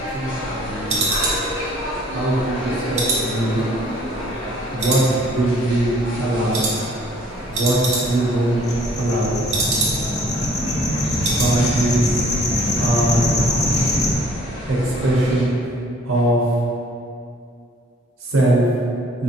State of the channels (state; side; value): normal; both; correlation 0.57